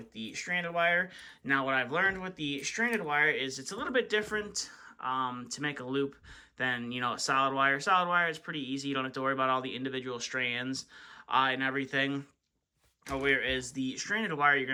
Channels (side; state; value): both; identical; correlation 1.00